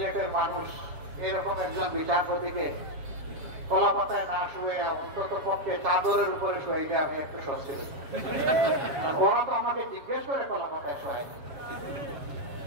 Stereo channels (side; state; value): left; late; 7.3 ms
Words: মানুষ এরকম একজন বিচারপতিকে কলা পাতায় না শুয়ে অন্তত পক্ষে চাদরের উপরে শুয়ে দিয়ে আমি একটু স্বস্তি হই। ওরা তো আমাকে জিজ্ঞেস করে কলা পাতায় শোয়াই,